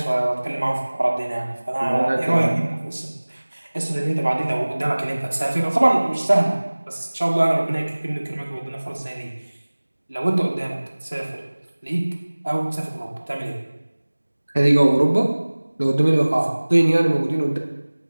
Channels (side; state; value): both; inverted; correlation -1.00